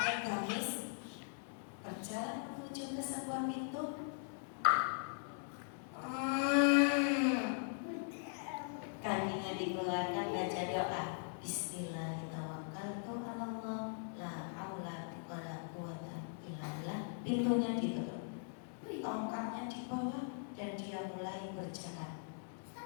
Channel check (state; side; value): silent; right; digital silence